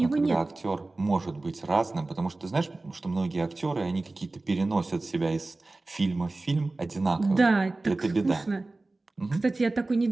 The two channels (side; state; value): left; quieter; 3.1 dB